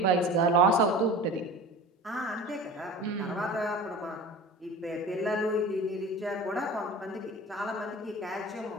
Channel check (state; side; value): normal; both; correlation 0.37